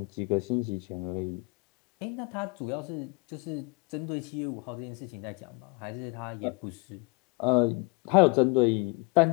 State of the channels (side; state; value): right; quieter; 29.4 dB